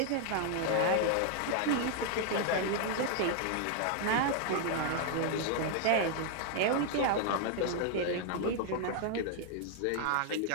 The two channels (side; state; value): both; different; correlation 0.00